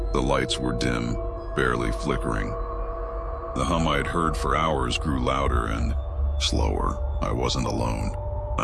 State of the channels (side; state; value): both; identical; correlation 1.00